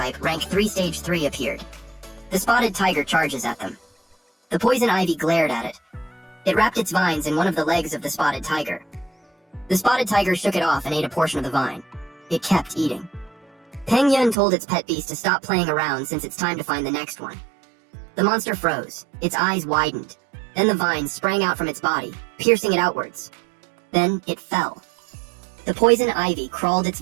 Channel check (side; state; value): left; drops out; at 14.4 s